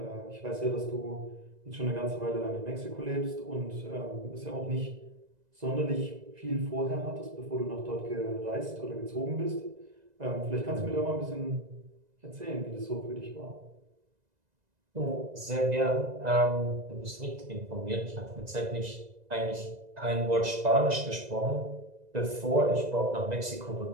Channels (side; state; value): left; late; 2.0 ms